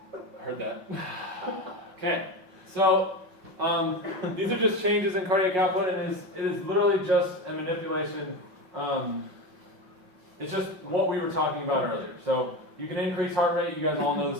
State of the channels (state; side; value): late; left; 5.4 ms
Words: squeeze. Heard that? Okay, so These are just changes in cardiac output, and it is literally just a manipulation. It's just what we were talking about earlier. So you can increase heart rate. You guys all know